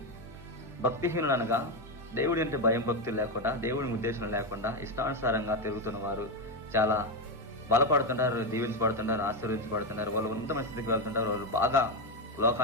భక్తిహీనులు అనగా దేవుడి అంటే భయం భక్తులు లేకుండా, దేవుడి ఉద్దేశం లేకుండా ఇష్టానుసారంగా తిరుగుతున్న వారు చాలా బలపడుతుంటారు, దీవించబడుతుంటారు, ఆశీర్వించబడుతుంటారు. వాళ్ళు ఉన్నతమైన స్థితికి వెళ్తుంటారు, వాళ్ళు బాగా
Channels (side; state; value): both; normal; correlation 0.08